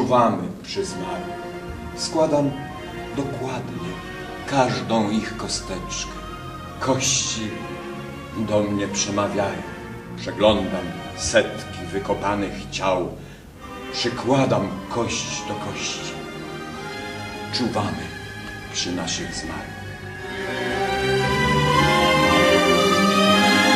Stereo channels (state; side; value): identical; both; correlation 1.00